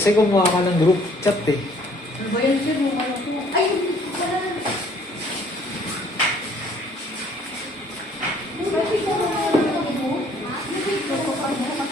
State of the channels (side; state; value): both; normal; correlation 0.59